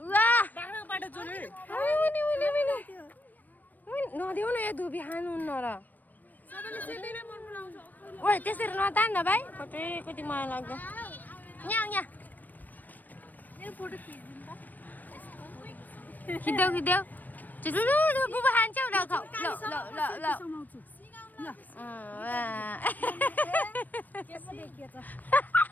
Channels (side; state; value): right; late; 0.086 ms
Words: नदेऊ न यो धुपी खानुहुन्न र ओइ त्यसरी नतान न भाइ कति कति माया लाग्दो यहाँ खिच्देऊ बुबा खान्छौ ल ल ल ल